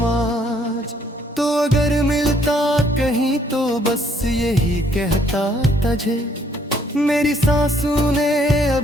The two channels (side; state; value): both; normal; correlation 0.66